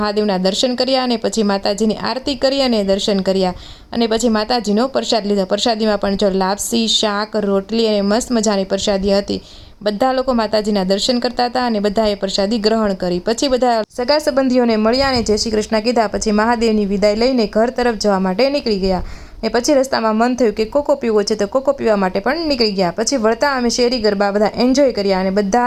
દર્શન કર્યા અને પછી માતાજીની આરતી કરી અને દર્શન કર્યા અને પછી માતાજીનો પ્રસાદ લીધો। પ્રસાદીમાં પણ જો લાપસી, શાક, રોટલી અને મસ્ત મજાની પ્રસાદી હતી। બધા લોકો માતાજીના દર્શન કરતા હતા અને બધાએ પ્રસાદી ગ્રહણ કરી। પછી બધા સગા સંબંધીઓને મળ્યા અને જય શ્રી કૃષ્ણ કીધા। પછી મહાદેવની વિદાય લઈને ઘર તરફ જવા માટે નીકળી ગયા ને પછી રસ્તામાં મન થયું કે કોકો પીવો છે, તો કોકો પીવા માટે પણ નીકળી ગયા। પછી વળતા અમે શેરી ગરબા બધા એન્જોય કર્યા અને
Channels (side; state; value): both; identical; correlation 1.00